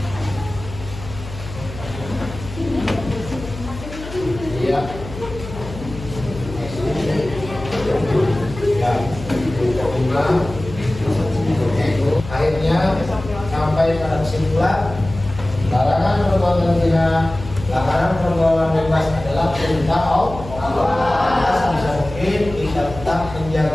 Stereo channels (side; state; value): left; noise; hum, 12 dB below the sound